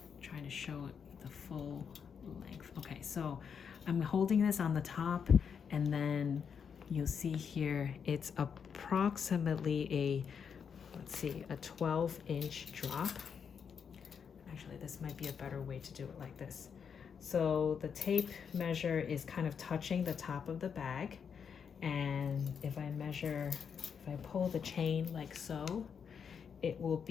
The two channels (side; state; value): right; quieter; 6.9 dB